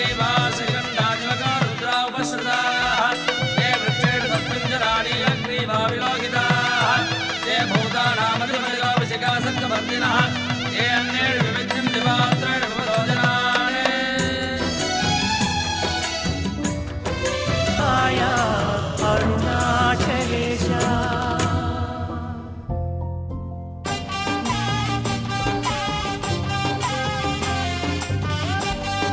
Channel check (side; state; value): both; identical; correlation 1.00